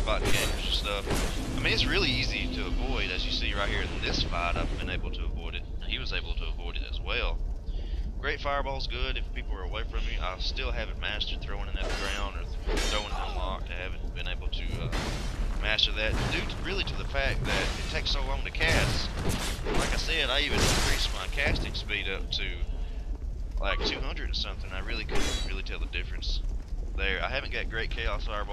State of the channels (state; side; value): identical; both; correlation 1.00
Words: gamers and stuff. I mean, it's really easy to avoid, as you see right here in this fight. I've been able to avoid it. He was able to avoid it as well. Great fireball's good if people are away from me. I still haven't mastered throwing it at the ground or throwing it unlocked. I haven't been able to master that, due really to the fact that it takes so long to cast. Like I said, I even increased my casting speed up to like 200 or something. I really couldn't really tell the difference there. I haven't got great Chaos